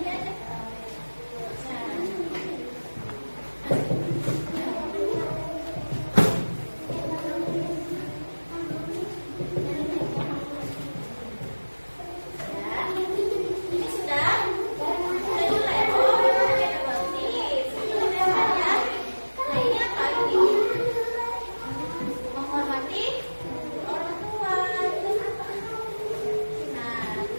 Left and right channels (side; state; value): both; inverted; correlation -1.00